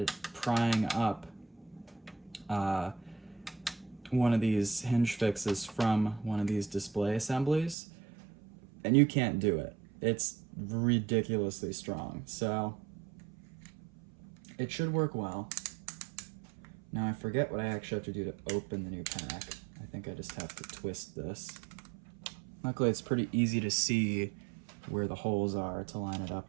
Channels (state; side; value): drops out; left; at 7.8 s